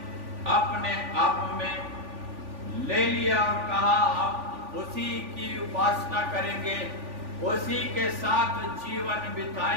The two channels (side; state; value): left; late; 3.5 ms